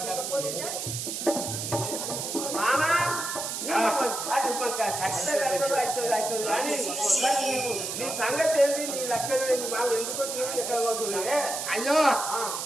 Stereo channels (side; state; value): right; noise; hiss, 4 dB below the sound